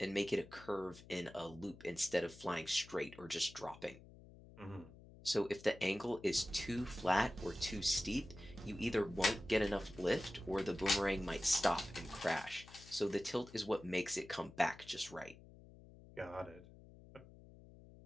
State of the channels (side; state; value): left; noise; hum, 19 dB below the sound